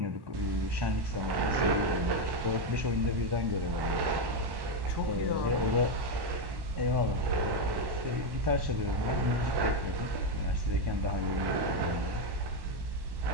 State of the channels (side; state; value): left; late; 1.1 ms